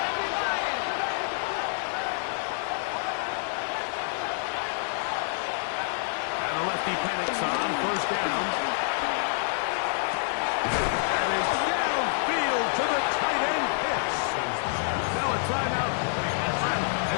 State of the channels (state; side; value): silent; right; 60 dB below the other